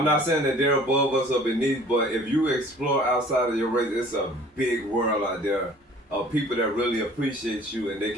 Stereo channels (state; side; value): normal; both; correlation 0.51